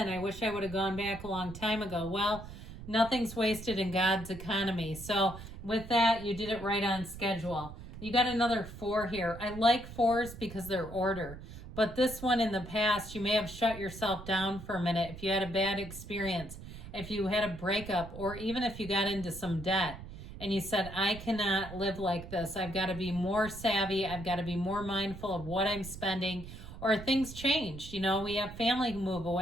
I wish I would have gone back a long time ago. Well, nothing's wasted in God's economy. So with that, you did it right on schedule. You got another 4 here. I like 4s because they're order. But this one in the past, you may have shut yourself down for a minute if you had a bad experience, if you had a breakup, or even if you got into some debt and you said, I cannot live like this. I've got to be more savvy. I've got to be more mindful of what I'm spending. Or things changed. You know, we have family who move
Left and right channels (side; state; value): right; noise; rumble, 13 dB below the sound